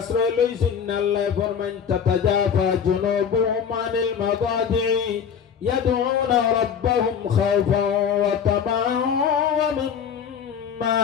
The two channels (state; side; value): quieter; right; 7.4 dB